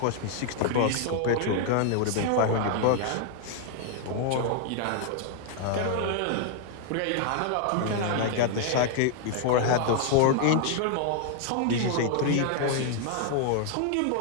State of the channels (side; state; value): both; different; correlation 0.00